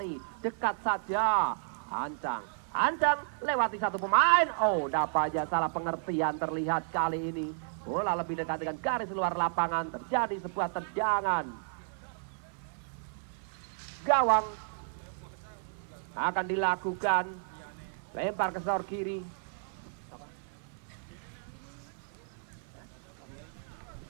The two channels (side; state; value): left; silent; 56 dB below the other